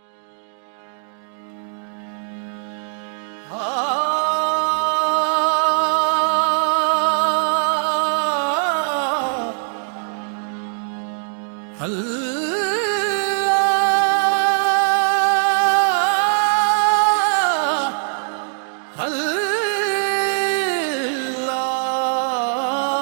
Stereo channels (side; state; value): left; silent; digital silence